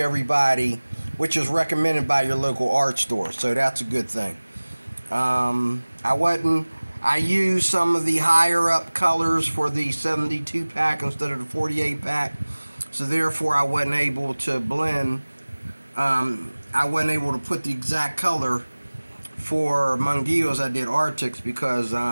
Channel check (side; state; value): both; inverted; correlation -1.00